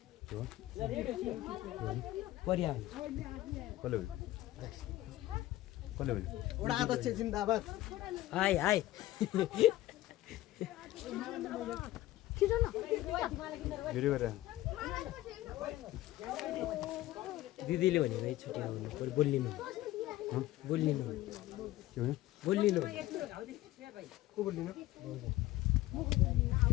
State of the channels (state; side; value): quieter; right; 16.3 dB